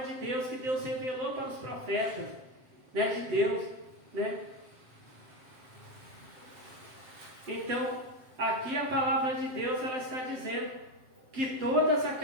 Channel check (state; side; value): late; left; 7.9 ms